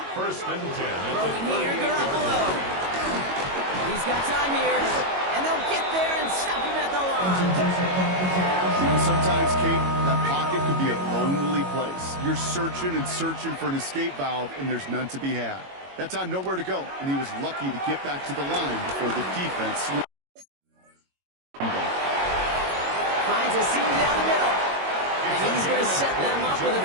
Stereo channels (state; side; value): late; left; 22 ms